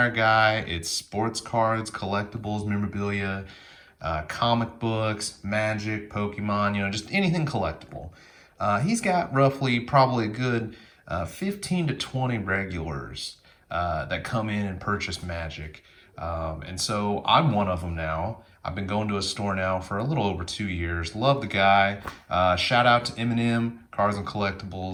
guy. It's sports cards, collectibles, memorabilia, comic books, Magic, Pokemon, just anything collectible. He's got roughly probably a good 15 to 20 regulars that come in and purchase Magic. And so I'm one of them now. I've been going to a store now for a little over 2 years. Love the guy. Shout out to Eminem, Cars and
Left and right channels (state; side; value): identical; both; correlation 1.00